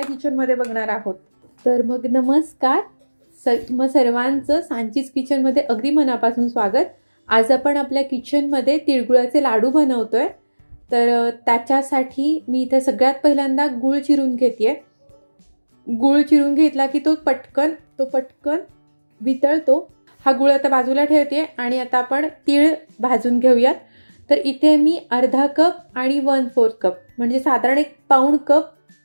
किचनमध्ये बघणार आहोत। तर मग नमस्कार, सर्वांचं सांचीज किचनमध्ये अगदी मनापासून स्वागत। आज आपण आपल्या किचनमध्ये तिळगुळाचे लाडू बनवतोय। तर त्याच्यासाठी मी इथे सगळ्यात पहिल्यांदा गूळ चिरून घेतेय। गूळ चिरून घेतला की तो पटकन वितळतो। हा गूळ आता बाजूला ठेवते आणि आता आपण तीळ भाजून घेऊयात। तर इथे मी अर्धा कप आणि 1/4 कप म्हणजे साधारण 1 पाऊण कप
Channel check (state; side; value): inverted; both; correlation -1.00